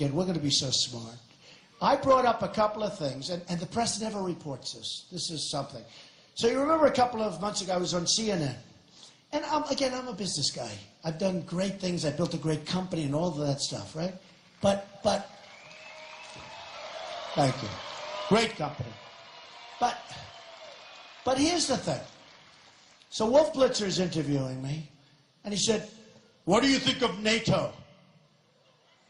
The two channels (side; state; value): both; identical; correlation 1.00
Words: We're going to be so smart. I brought up a couple of things, and the press never reports this. This is something. So you remember a couple of months ago I was on CNN. And I'm a business guy. I've done great things. I built a great company and all of that stuff, right? But thank you. Great company. But here's the thing. So Wolf Blitzer is interviewing me, and he said, "What do you think of NATO?"